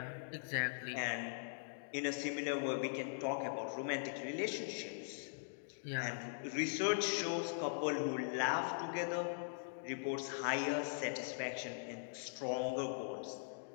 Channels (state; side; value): silent; right; digital silence